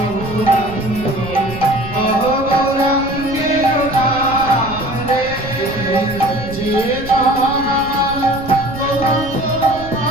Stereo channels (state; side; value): noise; right; rumble, 12 dB below the sound